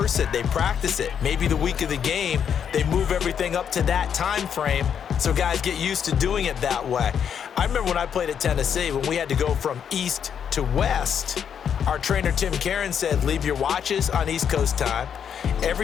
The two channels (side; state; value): right; quieter; 8.0 dB